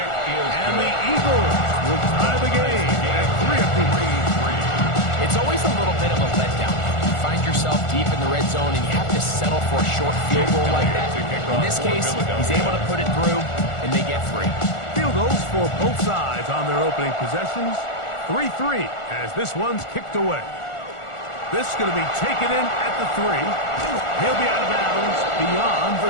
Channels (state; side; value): late; right; 1.4 ms